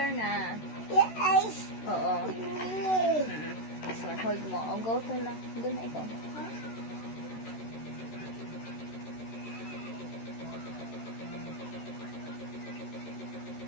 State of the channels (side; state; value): right; late; 13 ms